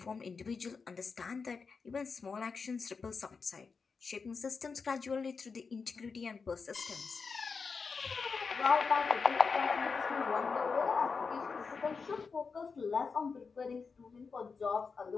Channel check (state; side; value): quieter; right; 5.0 dB